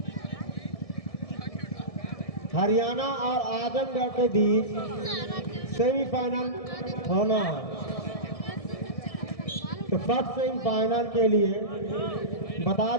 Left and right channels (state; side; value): late; right; 1.6 ms